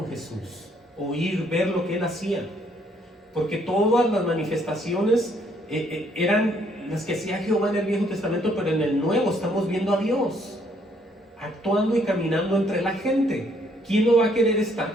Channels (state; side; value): normal; both; correlation 0.67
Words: Jesús, oír, ver lo que Él hacía. Porque todas las manifestaciones eran las que hacía Jehová en el Viejo Testamento, pero en el Nuevo estamos viendo a Dios actuando y caminando entre la gente. ¿Quién no va a querer estar